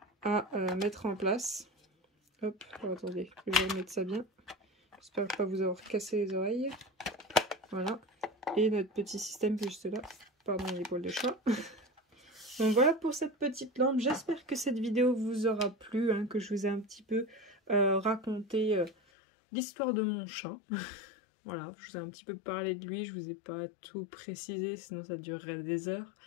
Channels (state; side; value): drops out; right; at 18.9 s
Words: à mettre en place. Hop, oh, attendez, je vais remettre ça bien. J'espère pas vous avoir cassé les oreilles. Voilà, et notre petit système juste là, pardon les poils de chat. Donc voilà pour cette petite lampe, j'espère que cette vidéo vous aura plu, hein, que je vous ai un petit peu raconté l'histoire de mon chat. Voilà, je vous ai un petit peu parlé de lui, je vous ai pas tout précisé, sinon ça durerait des heures.